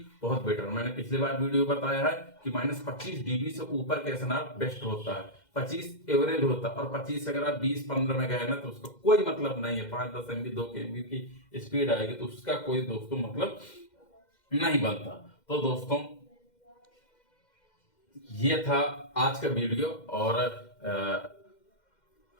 बहुत बेटर। मैंने पिछली बार वीडियो बताया है कि -25 डीबी से ऊपर का एसएनआर बेस्ट होता है, 25 एवरेज होता है। और 25 अगर आप 20-15 में गए ना तो उसका कोई मतलब नहीं है। 5-10 MB 2 MB की स्पीड आएगी तो उसका कोई दोस्तों मतलब नहीं बनता। तो दोस्तों ये था आज का वीडियो। और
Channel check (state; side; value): late; right; 2.1 ms